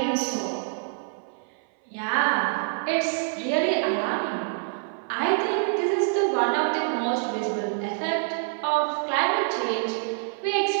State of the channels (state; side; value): silent; left; 59 dB below the other